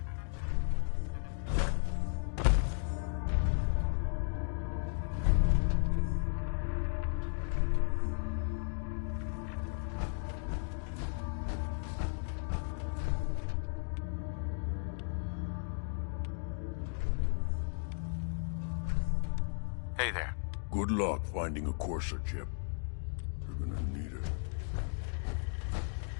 Hey there. Good luck finding a courser chip. You're gonna need it.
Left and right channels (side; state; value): right; silent; 54 dB below the other